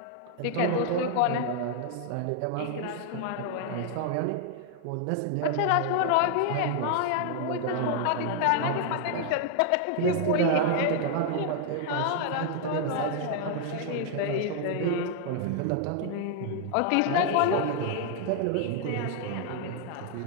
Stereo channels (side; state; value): both; different; correlation 0.00